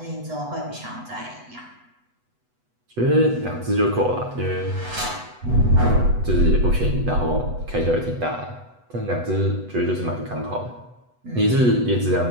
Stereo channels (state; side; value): late; left; 8.1 ms